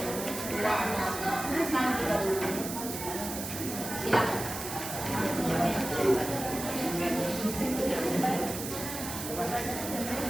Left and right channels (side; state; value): right; noise; hiss, 7 dB below the sound